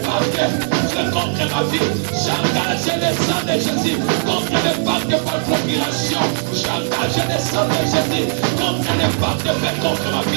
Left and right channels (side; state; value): left; silent; digital silence